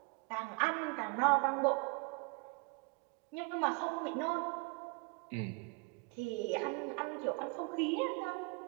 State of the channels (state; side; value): quieter; left; 30.7 dB